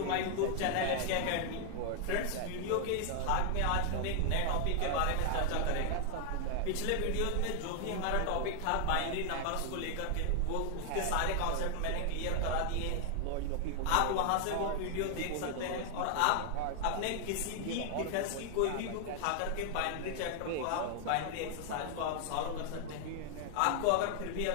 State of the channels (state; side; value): different; both; correlation 0.00